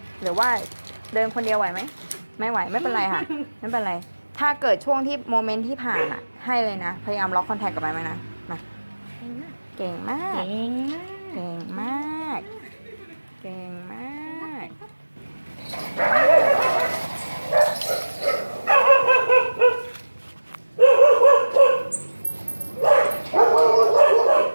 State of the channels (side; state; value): both; inverted; correlation -1.00